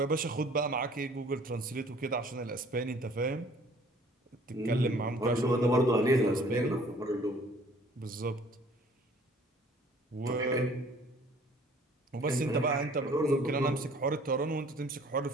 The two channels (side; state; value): both; normal; correlation 0.55